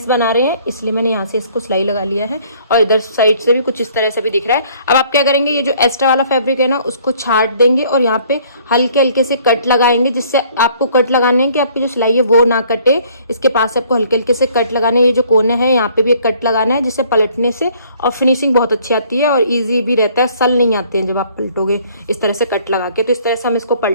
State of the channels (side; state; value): both; inverted; correlation -0.59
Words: बना रहे हैं, इसलिए मैंने यहाँ से इसको सिलाई लगा लिया है। और इधर साइड से भी कुछ इस तरह से भी दिख रहा है। अब आप क्या करेंगे, ये जो एक्स्ट्रा वाला फैब्रिक है ना, उसको छाट देंगे और यहाँ पे हल्के हल्के से कट लगाएंगे, जिससे आपको कट लगाने हैं कि आपकी जो सिलाई है वो ना कटे। इसके पास आपको हल्के हल्के से कट लगाने हैं। ये जो कोने हैं यहाँ पे भी एक कट लगाना है, जिससे पलटने से और फिनिशिंग बहुत अच्छी आती है और इजी भी रहता है, सल नहीं आते हैं जब आप पलटोगे इस तरह से कट लगा के। तो इस तरह से हम इसको